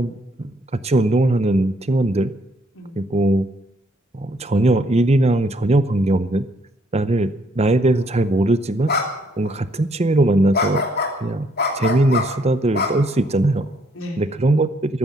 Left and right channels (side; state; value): both; normal; correlation 0.69